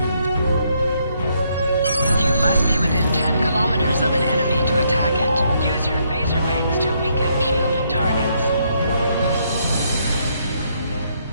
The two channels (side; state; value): both; inverted; correlation -0.73